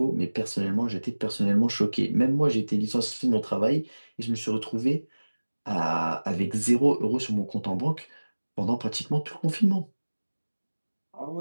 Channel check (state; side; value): inverted; both; correlation -1.00